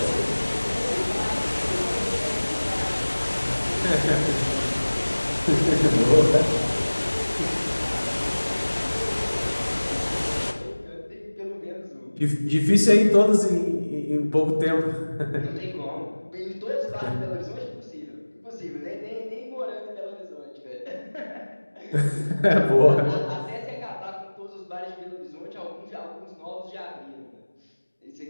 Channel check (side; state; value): both; inverted; correlation -1.00